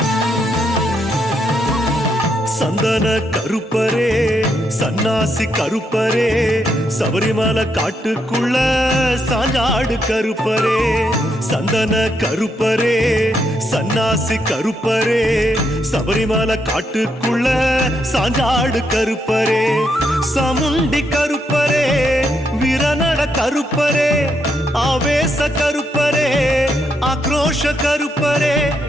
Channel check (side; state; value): both; normal; correlation 0.78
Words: சந்தன கருப்பரே சன்னாசி கருப்பரே சபரிமலை காட்டுக்குள்ள சாஞ்சாடு கருப்பரே சந்தன கருப்பரே சன்னாசி கருப்பரே சபரிமலை காட்டுக்குள்ள சாஞ்சாடு கருப்பரே சமுண்டி கருப்பரே வீரநட கருப்பரே ஆவேச கருப்பரே ஆக்ரோஷ கருப்பரே